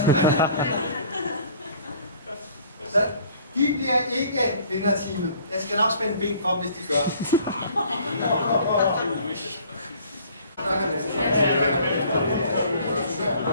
Så de bliver ikke vinderteamet. Jeg skal nok spænde ben for dem, hvis de gør.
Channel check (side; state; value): both; inverted; correlation -0.53